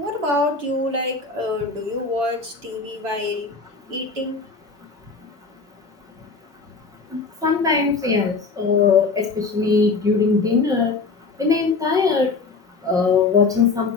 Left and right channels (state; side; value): quieter; right; 4.3 dB